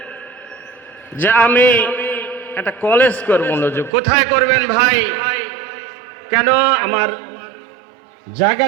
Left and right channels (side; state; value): left; drops out; at 3.9 s